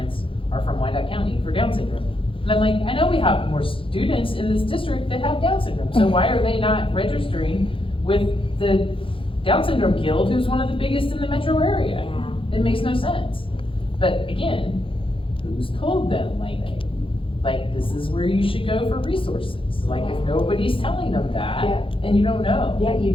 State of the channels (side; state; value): right; late; 0.26 ms